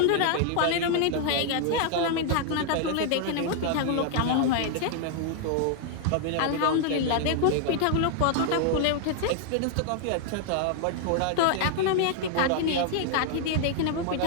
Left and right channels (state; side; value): different; both; correlation 0.00